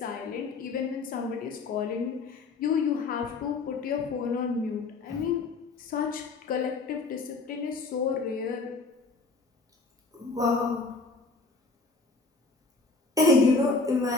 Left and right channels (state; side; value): quieter; right; 3.9 dB